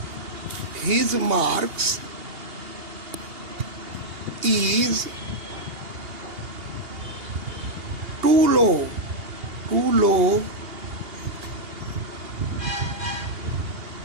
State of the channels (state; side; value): late; left; 2.8 ms